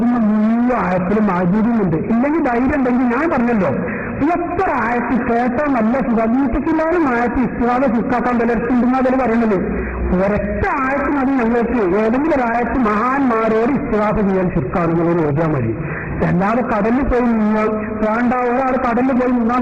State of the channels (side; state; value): both; identical; correlation 1.00